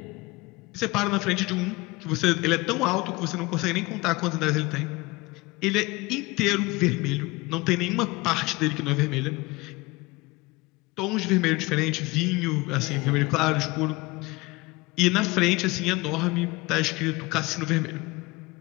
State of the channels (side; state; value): right; quieter; 23.0 dB